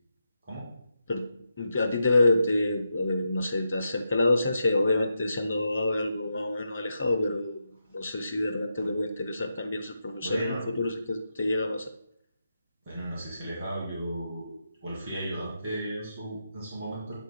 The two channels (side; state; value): both; inverted; correlation -0.85